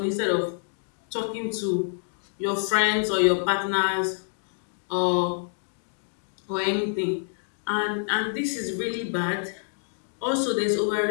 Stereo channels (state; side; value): silent; right; digital silence